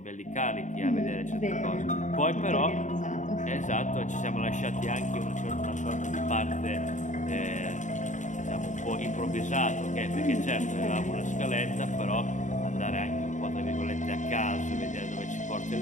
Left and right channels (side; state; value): right; late; 0.36 ms